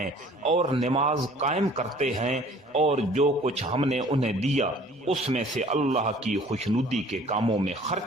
اور نماز قائم کرتے ہیں، اور جو کچھ ہم نے انہیں دیا اس میں سے اللہ کی خوشنودی کے کاموں میں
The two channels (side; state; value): both; normal; correlation 0.52